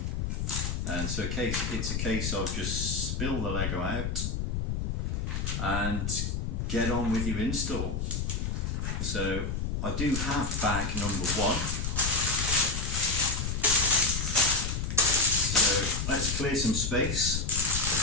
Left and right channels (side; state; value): left; noise; rumble, 2 dB below the sound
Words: And so it's a case of just spill the Lego out and get on with your install. So I do have bag number 1. So let's clear some space.